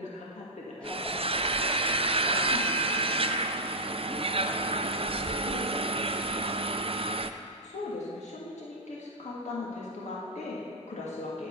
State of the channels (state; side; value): normal; both; correlation -0.08